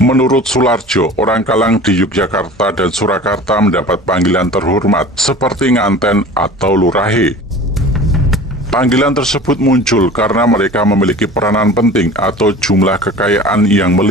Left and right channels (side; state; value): both; normal; correlation 0.40